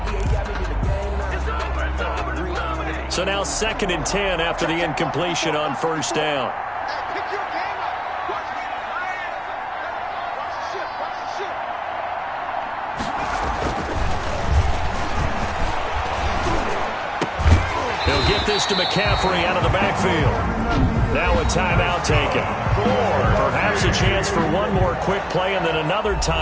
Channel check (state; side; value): identical; both; correlation 1.00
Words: So now second and 10 after the incompletion on first down. He'll get this to McCaffrey out of the backfield. Now a timeout taken. Perhaps a chance for one more quick play and then another